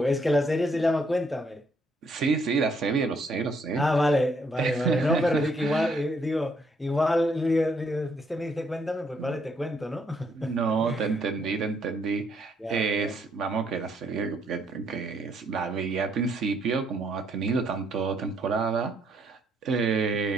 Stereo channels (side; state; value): both; normal; correlation 0.71